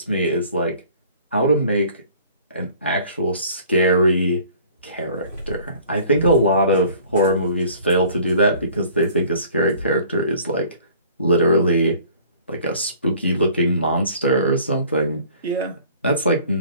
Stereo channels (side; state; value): both; inverted; correlation -0.52